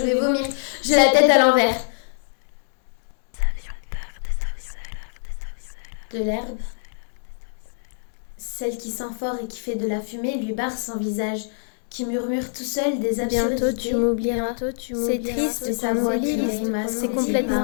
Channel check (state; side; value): silent; right; digital silence